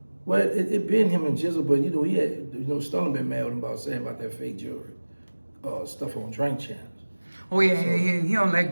Well, it been him and Jizzle, but you know, he had, you know, Stunner been mad with him about saying about that fake jewelry, stuff on drink channels. Oh yeah, So, yeah, he don't let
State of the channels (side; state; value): both; inverted; correlation -1.00